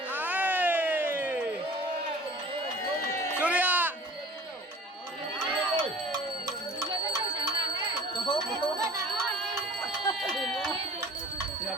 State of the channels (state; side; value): normal; both; correlation 0.45